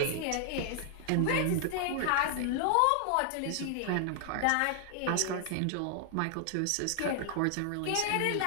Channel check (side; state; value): both; different; correlation 0.00